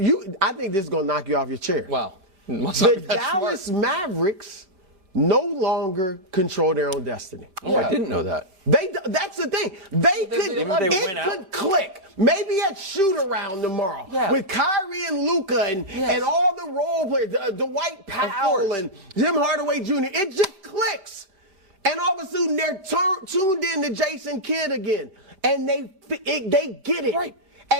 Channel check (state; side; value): late; left; 5.1 ms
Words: think this is going to knock you off your chair. Wow. The Dallas Mavericks no longer control their own destiny. Oh, I didn't know that. That's the thing. It could click. Maybe at shoot around tomorrow with Kyrie and Luka and all the role players, Dwight Powell and Jim Hardaway Jr. It just clicks. And all of a sudden they're tuned in to Jason Kidd again. And they get it. Right.